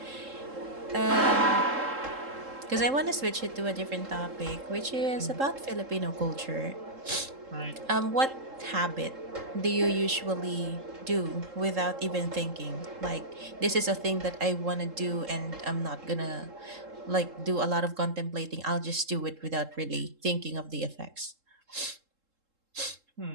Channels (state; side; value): late; left; 3.7 ms